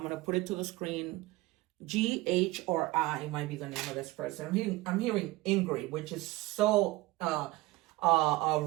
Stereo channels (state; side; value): quieter; left; 19.7 dB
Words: gonna put it to the screen. G, H, or I might be the name of this person. I'm hearing Ingrid, which is so a